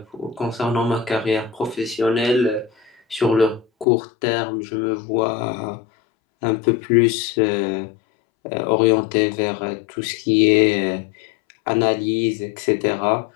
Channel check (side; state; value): right; drops out; at 3.9 s